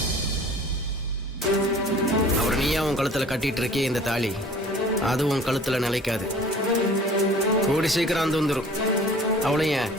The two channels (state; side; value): normal; both; correlation 0.48